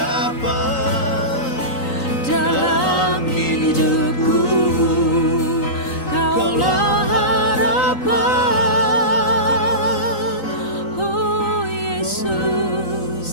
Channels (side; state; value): right; late; 3.9 ms